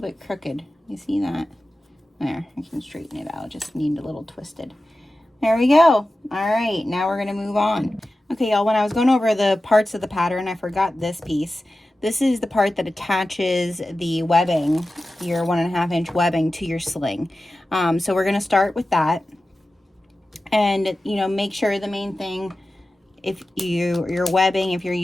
crooked. You see that? There, I can straighten it out. Just need a little twisted. There we go. All right, now we're gonna move on. Okay, y'all, when I was going over the parts of the pattern, I forgot this piece. This is the part that attaches the webbing, your 1.5 inch webbing to your sling. So we're gonna start with that. And, you know, make sure the main thing, if your webbing, if you're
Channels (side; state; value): both; normal; correlation 0.94